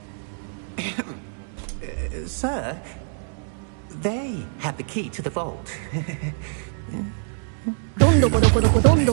Sir, they have the key to the vault. どんどこどこどこどん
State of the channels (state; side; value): silent; left; digital silence